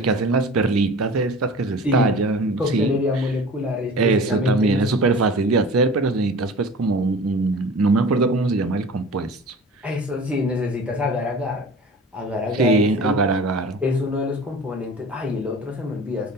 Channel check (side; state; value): both; normal; correlation 0.40